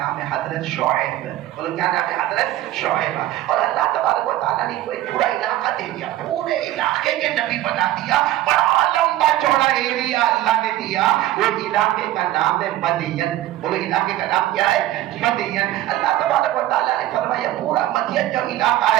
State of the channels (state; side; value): quieter; left; 14.4 dB